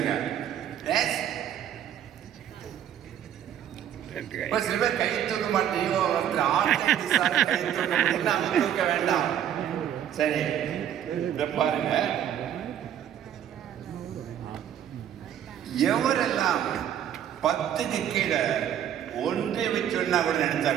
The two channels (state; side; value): quieter; left; 10.0 dB